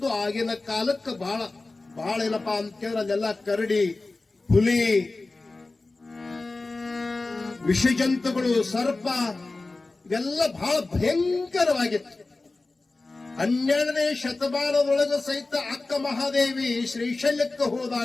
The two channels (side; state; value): right; quieter; 3.3 dB